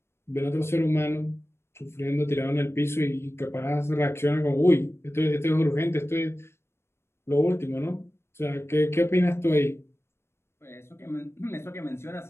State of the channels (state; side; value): late; right; 0.12 ms